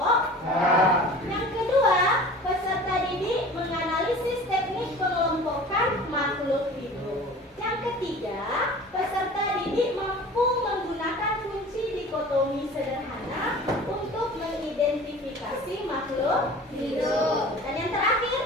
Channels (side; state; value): both; normal; correlation 0.41